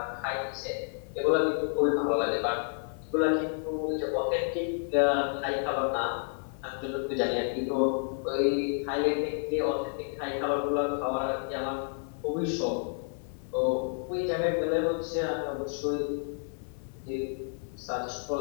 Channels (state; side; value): silent; right; 58 dB below the other